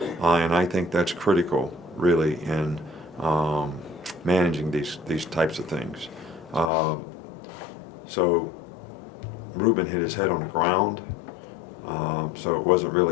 and I think that's critical, really, in managing these types of things. So Ruben hit his head on the ground, so it wasn't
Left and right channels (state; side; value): drops out; right; at 6.7 s